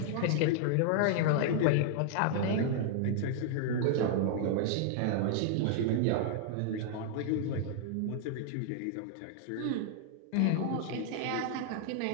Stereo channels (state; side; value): different; both; correlation -0.01